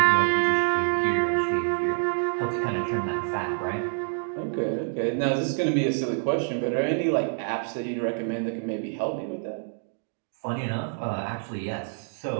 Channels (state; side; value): silent; left; digital silence